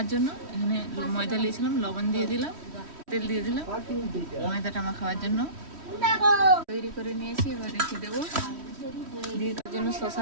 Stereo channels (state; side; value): late; left; 3.1 ms